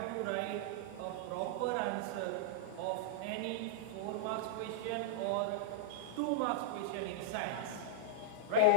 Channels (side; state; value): both; different; correlation -0.02